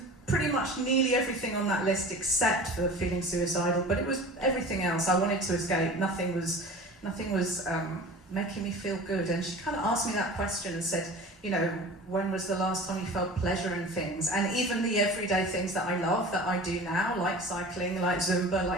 pretty much nearly everything on that list except for feeling suicidal, but it was everything else. I wanted to escape. Nothing was making me feel good. And she kind of asked me that question and said, when was the last time you felt pleasure in things? And even the everyday things that I love, that I do now, like cycling, like Zumba,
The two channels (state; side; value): normal; both; correlation 0.38